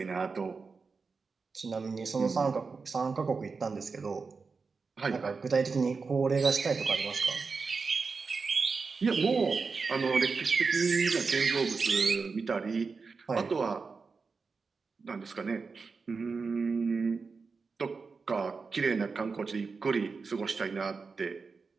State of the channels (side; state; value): left; quieter; 4.7 dB